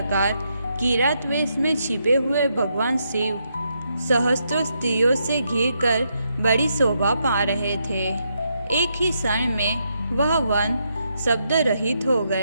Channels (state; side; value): inverted; both; correlation -0.80